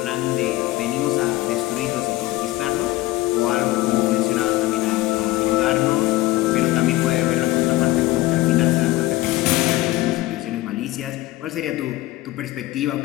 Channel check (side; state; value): right; quieter; 18.0 dB